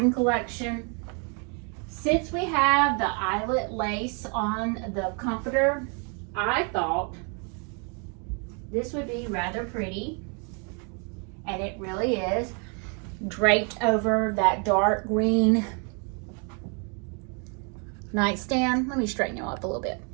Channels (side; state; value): left; quieter; 37.0 dB